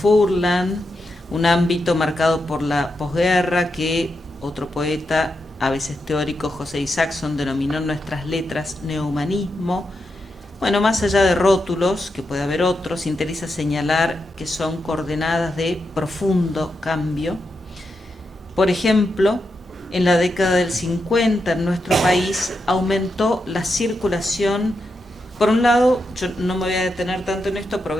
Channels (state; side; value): normal; both; correlation 0.86